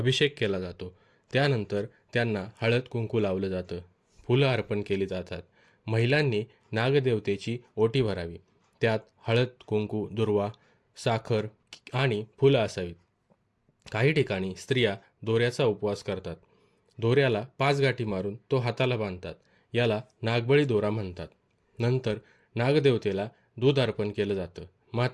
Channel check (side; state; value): both; identical; correlation 1.00